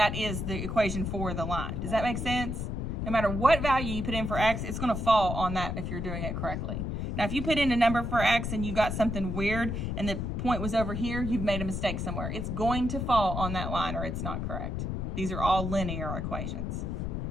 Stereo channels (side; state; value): left; noise; rumble, 3 dB below the sound